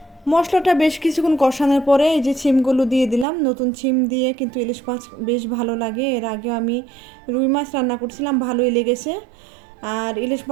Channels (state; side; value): drops out; left; at 3.2 s